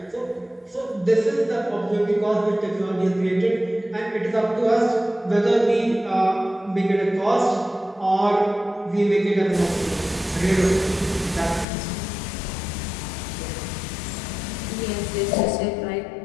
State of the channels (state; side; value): drops out; right; at 11.7 s